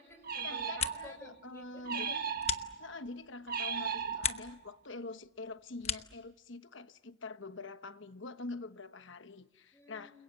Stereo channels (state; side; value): normal; both; correlation -0.14